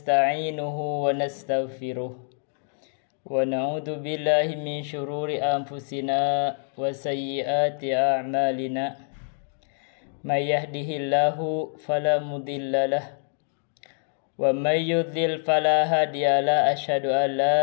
wa nastaghfiruh wa na'udzu billahi min syururi anfusina wa sayyiati a'malina. May yahdihillahu fala mudhillalah wa may yudlil fala hadiyalah. Asyhadu an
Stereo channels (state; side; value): silent; right; 61 dB below the other